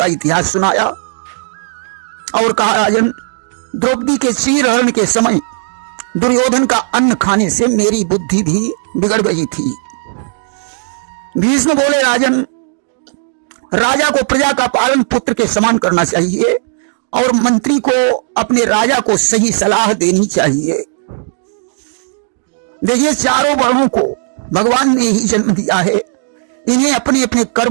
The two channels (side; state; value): left; silent; digital silence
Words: इतिहास सुनाया और कहा, राजन, द्रौपदी के चीरहरण के समय दुर्योधन का अन्न खाने से मेरी बुद्धि भी बिगड़ गई थी। भीष्म बोले, राजन, राजा को प्रजा का पालन पुत्र के समान करना चाहिए और मंत्री को अपने राजा को सही सलाह देनी चाहिए। देखिए, चारों वर्णों को भगवान ने ही जन्म दिया है। इन्हें अपने अपने